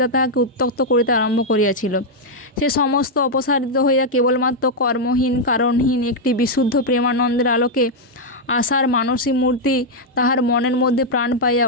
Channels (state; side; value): normal; both; correlation -0.02